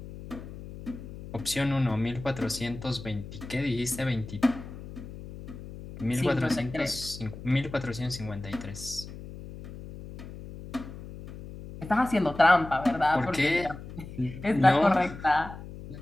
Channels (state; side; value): noise; left; hum, 13 dB below the sound